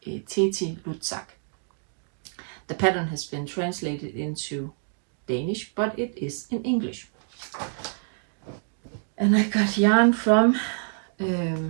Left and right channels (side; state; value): left; silent; 59 dB below the other